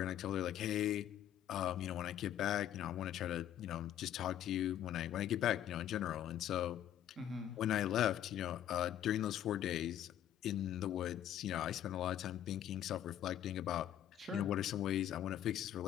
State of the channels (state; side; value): quieter; right; 11.3 dB